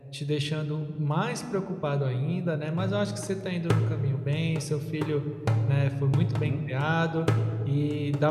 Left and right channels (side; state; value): both; identical; correlation 1.00